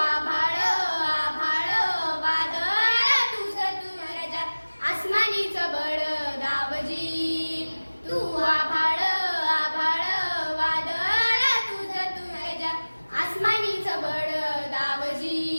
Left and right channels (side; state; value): both; inverted; correlation -1.00